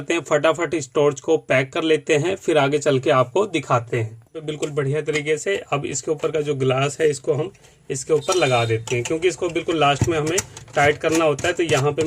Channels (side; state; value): both; identical; correlation 1.00